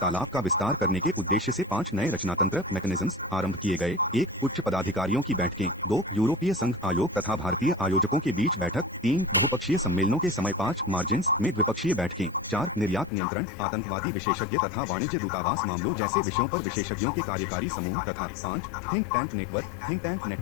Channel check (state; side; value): drops out; right; at 13.1 s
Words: का विस्तार करने के उद्देश्य से 5 नए रचनातंत्र मैकेनिज्म्स आरंभ किए गए। 1 उच्च पदाधिकारियों की बैठकें, 2 यूरोपीय संघ आयोग तथा भारतीय आयोजकों के बीच बैठक, 3 बहुपक्षीय सम्मेलनों के समय 5 मार्जिन्स में द्विपक्षीय बैठकें, 4 निर्यात नियंत्रण, आतंकवादी विशेषज्ञ तथा वाणिज्य दूतावास मामलों जैसे विषयों पर विशेषज्ञों के कार्यकारी समूह तथा 5 थिंक टैंक